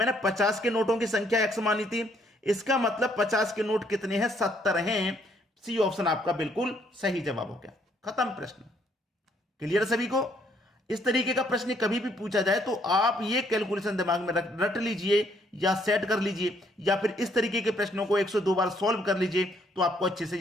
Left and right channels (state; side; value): normal; both; correlation 0.68